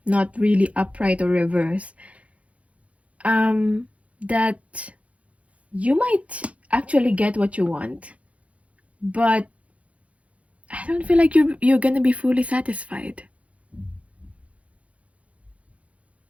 not really upright or reverse, that you might actually get what you want, but I don't feel like you're gonna be fully satisfied.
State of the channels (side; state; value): left; late; 0.064 ms